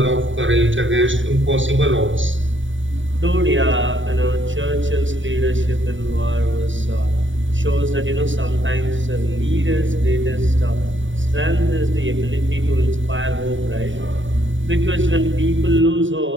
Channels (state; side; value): late; left; 0.56 ms